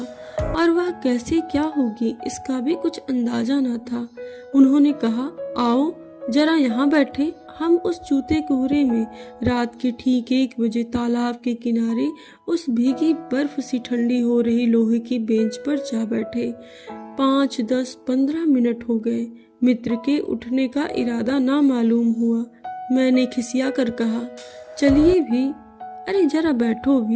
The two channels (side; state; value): both; identical; correlation 1.00